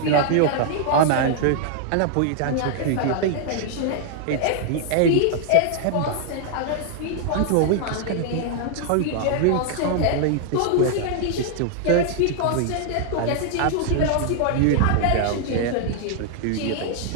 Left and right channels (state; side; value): different; both; correlation 0.00